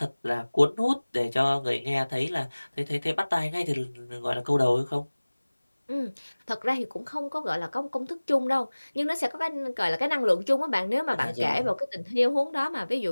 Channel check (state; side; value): inverted; both; correlation -1.00